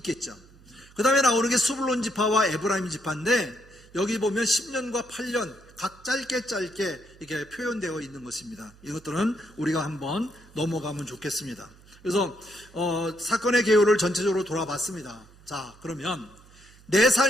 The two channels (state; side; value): noise; right; hum, 25 dB below the sound